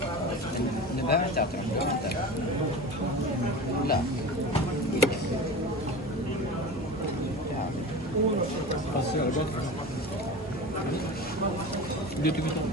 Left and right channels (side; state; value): both; normal; correlation 0.32